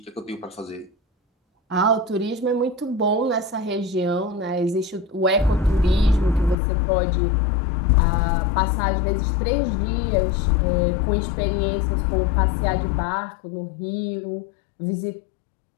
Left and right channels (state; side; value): drops out; right; at 6.6 s